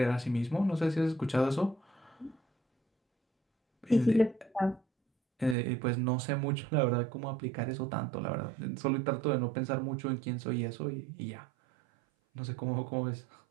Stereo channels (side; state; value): left; drops out; at 5.6 s